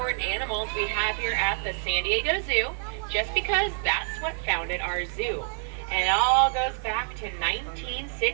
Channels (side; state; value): left; silent; 60 dB below the other